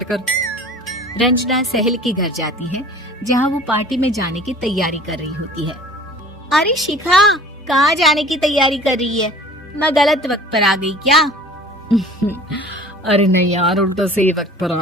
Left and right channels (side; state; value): both; normal; correlation 0.46